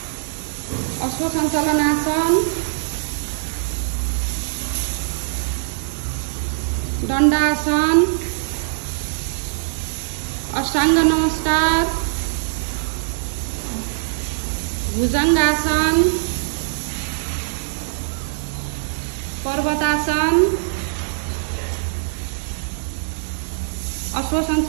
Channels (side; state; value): left; silent; digital silence